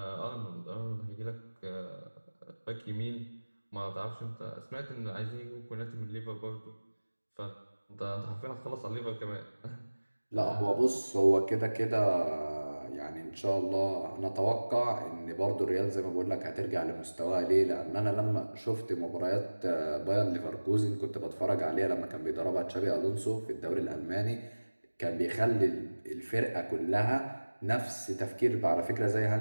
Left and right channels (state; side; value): inverted; both; correlation -1.00